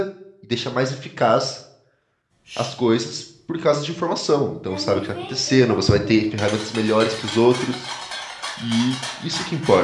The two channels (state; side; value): identical; both; correlation 1.00